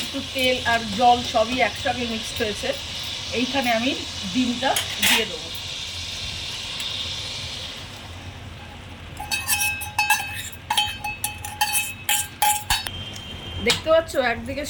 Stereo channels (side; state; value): both; identical; correlation 1.00